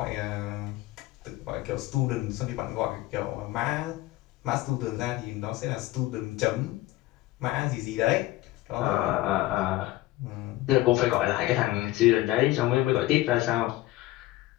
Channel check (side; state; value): right; quieter; 17.5 dB